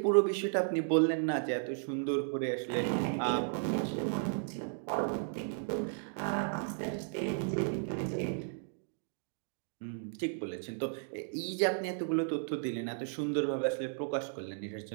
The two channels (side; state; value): left; silent; digital silence